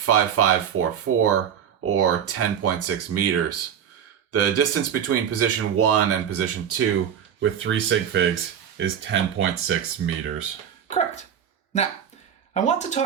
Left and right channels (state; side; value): quieter; left; 8.7 dB